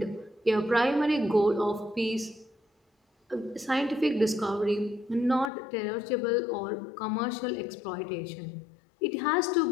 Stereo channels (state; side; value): drops out; right; at 5.5 s